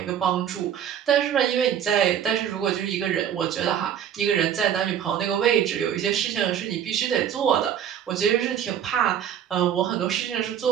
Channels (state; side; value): quieter; left; 9.4 dB